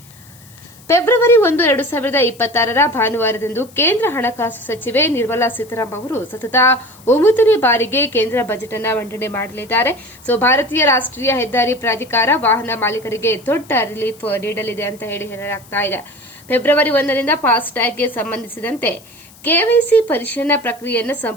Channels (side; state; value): left; noise; hiss, 24 dB below the sound